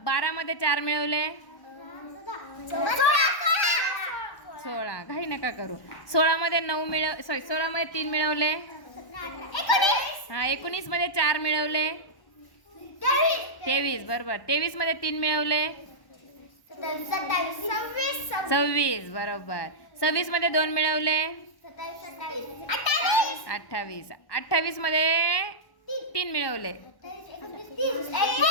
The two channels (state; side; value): late; right; 1.1 ms